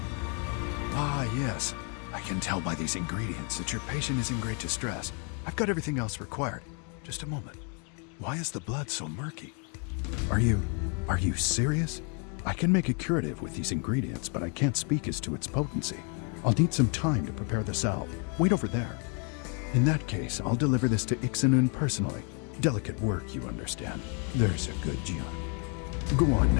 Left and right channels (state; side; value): quieter; right; 38.3 dB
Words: Ah, yes. I can tell by these ingredients that your patient is in great distress. I've got everything else required. Just a moment. Why is the blood so murky? Are you serious? I can make a curative with these ingredients, but I can't speak as to its potency. I'll need some time to prepare the salve. Wait over there. In that case, I'll deliver this to Ixanun personally. Delicate work, you understand. There's a good Jian. Go on